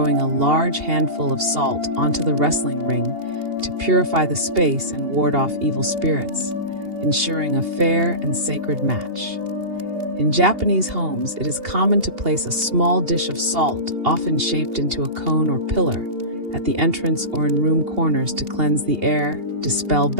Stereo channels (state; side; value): late; left; 2.8 ms